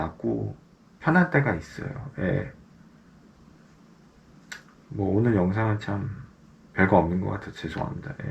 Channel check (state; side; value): identical; both; correlation 1.00